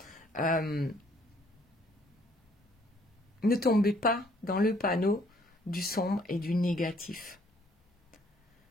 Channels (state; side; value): normal; both; correlation 0.64